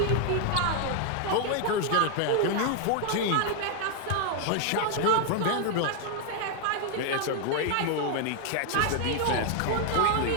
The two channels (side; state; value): both; different; correlation 0.00